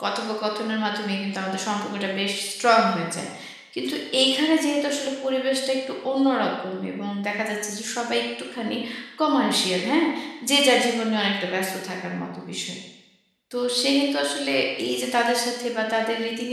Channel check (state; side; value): identical; both; correlation 1.00